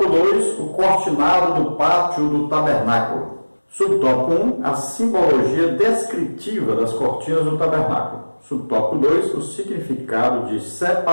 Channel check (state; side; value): inverted; both; correlation -1.00